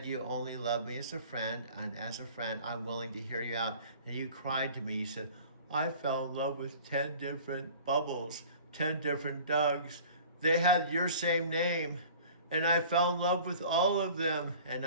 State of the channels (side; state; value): both; inverted; correlation -0.45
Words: you only love me as a friend, and as a friend, I'm willing to hear you out. And you cried to me. You said, I fell in love with 10 different bubbles, 10 different Dougs. They had your same name, and I fell in love with all of them. And